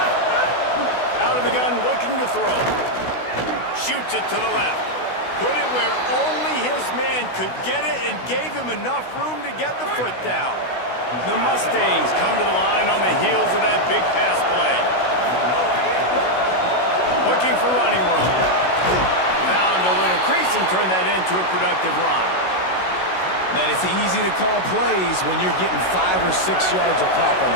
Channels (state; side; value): late; right; 16 ms